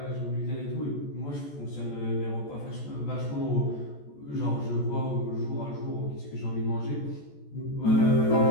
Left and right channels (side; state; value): right; late; 14 ms